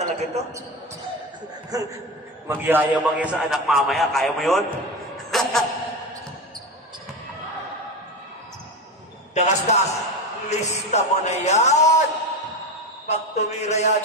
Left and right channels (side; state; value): both; normal; correlation 0.21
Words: ito? Magyayabang yan sa anak mamaya. Kaya mo yun? Dagasdas. Lista mo na yan. Pag tumira yan,